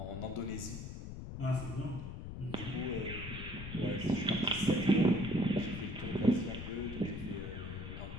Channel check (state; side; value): noise; left; rumble, 8 dB below the sound